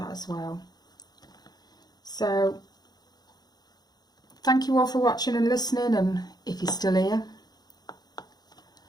as well. So thank you all for watching and listening, and if you're still here,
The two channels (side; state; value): right; late; 0.19 ms